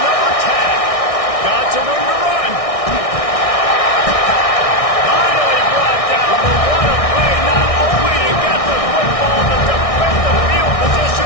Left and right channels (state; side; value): late; right; 1.6 ms